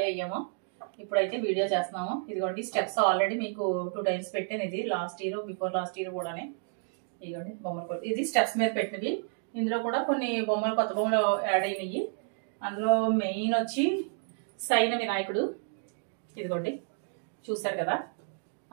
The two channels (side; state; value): left; silent; 57 dB below the other